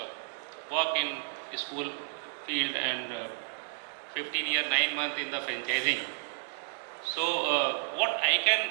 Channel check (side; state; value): left; silent; digital silence